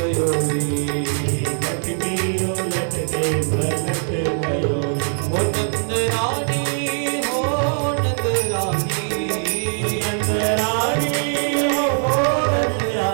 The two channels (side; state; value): left; silent; digital silence